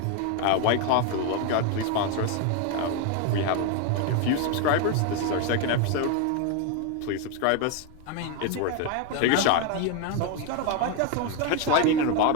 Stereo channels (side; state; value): both; different; correlation 0.01